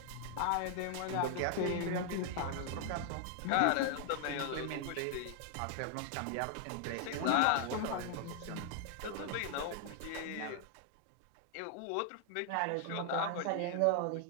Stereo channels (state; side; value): different; both; correlation 0.00